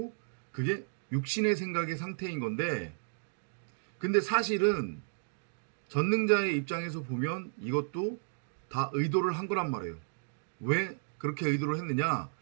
그게 육신의 생각의 상태인 건데, 근데 사실은 전능자의 입장에서 보면 이것도 다 의도를 한 거란 말이에요. 왜 그렇게 의도를 했느냐?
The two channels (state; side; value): silent; left; digital silence